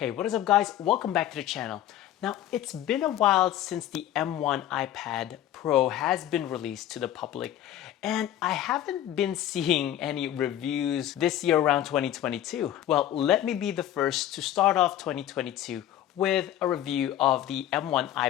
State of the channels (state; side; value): quieter; right; 12.1 dB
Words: Hey, what is up guys? Welcome back to the channel. Now, it's been a while since the M1 iPad Pro has been released to the public, and I haven't been seeing any reviews this year around 2022. Well, let me be the first to start off 2022 with a review of the M1